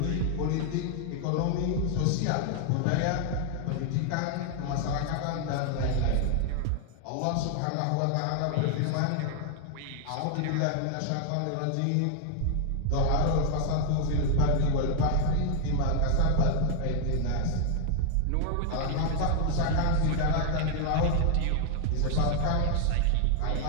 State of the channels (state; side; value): different; both; correlation 0.00